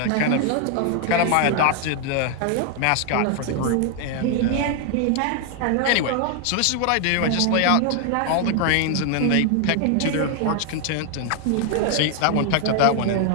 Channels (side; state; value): both; different; correlation 0.00